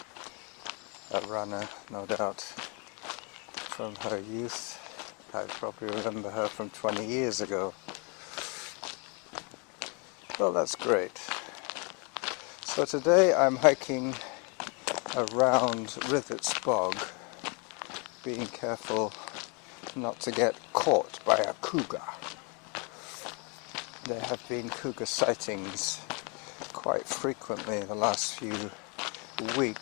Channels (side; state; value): right; quieter; 33.6 dB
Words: A runner, no doubt, from her youth. I probably remember her from 20 years ago. Well, that's great. So today I'm hiking around Rithet's bog, being careful not to get caught by a cougar. There have been cougar sightings quite frequently in the last few